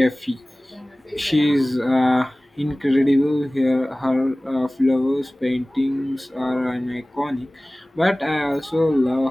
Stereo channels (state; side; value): normal; both; correlation 0.98